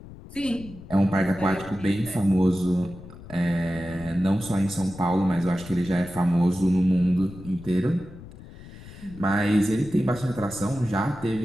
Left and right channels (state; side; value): noise; left; rumble, 16 dB below the sound